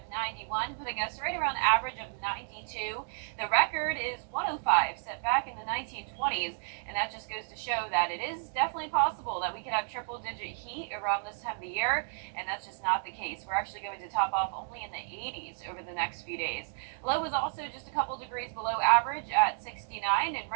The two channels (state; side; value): silent; left; digital silence